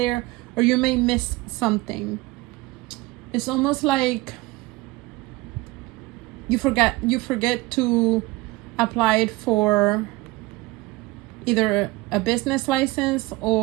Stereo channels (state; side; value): quieter; left; 20.8 dB